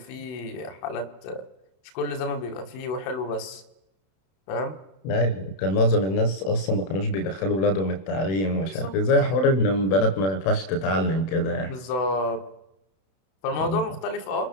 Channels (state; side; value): late; right; 31 ms